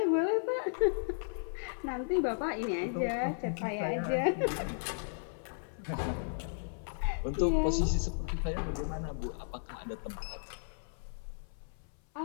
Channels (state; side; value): silent; right; 55 dB below the other